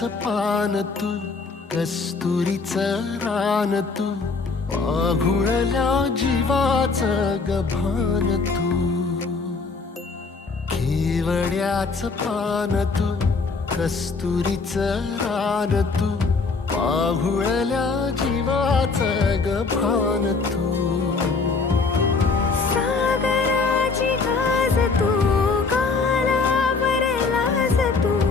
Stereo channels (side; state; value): right; quieter; 4.3 dB